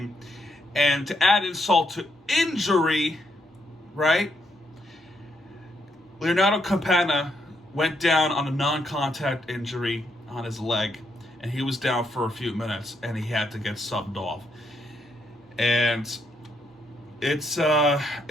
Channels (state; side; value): normal; both; correlation 0.76